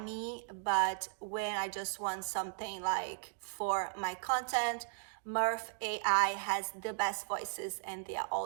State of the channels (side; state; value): left; silent; digital silence